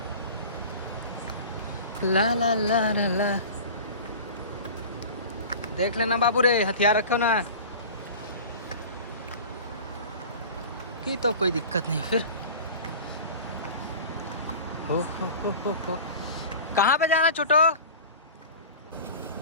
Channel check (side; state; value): both; inverted; correlation -0.37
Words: ला ला ला ला ला। देख लेना बाबू रे, हथियार रखो ना कि तो कोई दिक्कत नहीं फिर। हो। कहाँ पे जाना छोटो?